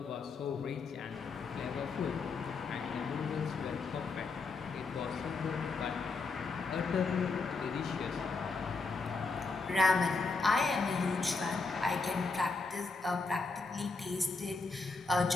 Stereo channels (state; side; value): quieter; right; 4.1 dB